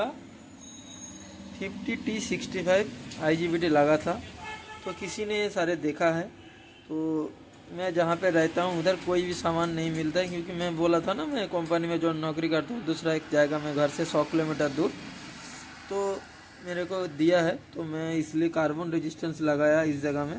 50T65 IGBT लगा था, तो किसी ने ये सारे देखा है। तो मैं जहाँ पे रहता हूँ उधर कोई भी सामान नहीं मिलता है, क्योंकि मैं बोला था ना, मैं कंपनी में जो नौकरी करता हूँ दूसरा एक जाएगा, मैं घर से 100 किलोमीटर दूर, तो मेरे को दिया है, तो मैं इसलिए कार्बन रेजिस्टेंस लगाया इस जगह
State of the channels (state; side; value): identical; both; correlation 1.00